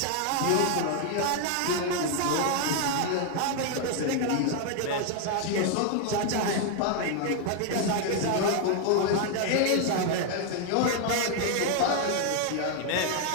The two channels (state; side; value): different; both; correlation 0.00